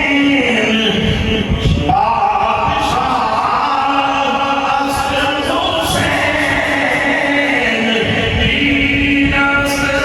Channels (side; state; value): both; identical; correlation 1.00